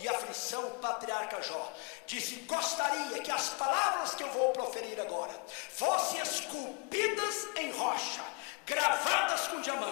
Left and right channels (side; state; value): right; quieter; 34.4 dB